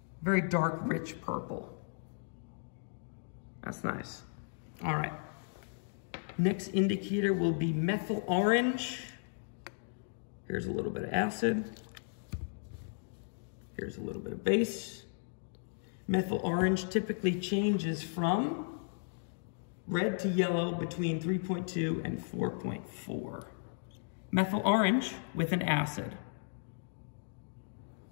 Very dark, rich purple. That's nice. All right. Next indicator will be methyl orange. Here's a little bit of acid. Here's a little bit of base. Methyl orange typically changes from red to yellow between 3.2 and 4.4. Methyl orange with an acid.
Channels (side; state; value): right; silent; digital silence